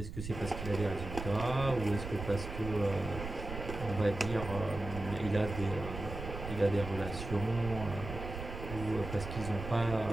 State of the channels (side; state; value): right; noise; rumble, 8 dB below the sound